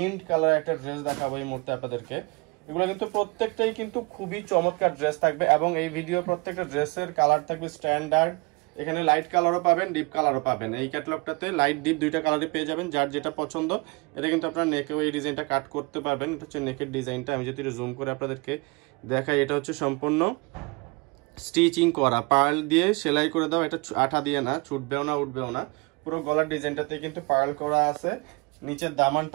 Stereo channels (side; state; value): left; quieter; 27.7 dB